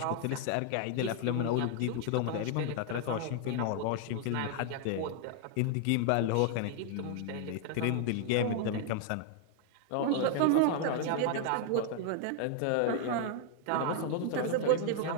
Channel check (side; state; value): both; different; correlation 0.00